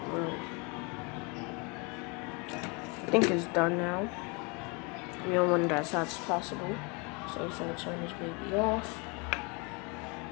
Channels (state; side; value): quieter; right; 30.9 dB